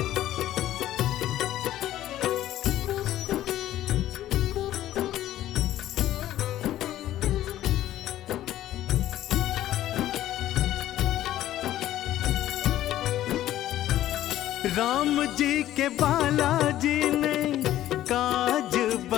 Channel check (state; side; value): quieter; right; 13.4 dB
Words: राम जी के बालाजी ने काज